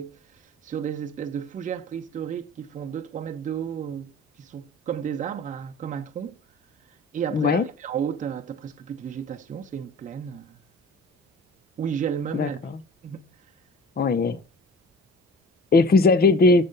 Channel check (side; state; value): both; normal; correlation 0.41